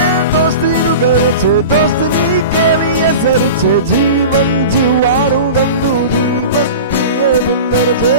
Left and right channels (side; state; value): both; inverted; correlation -0.33